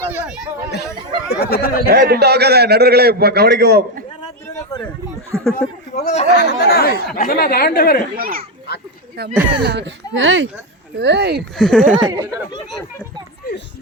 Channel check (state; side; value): normal; both; correlation 0.10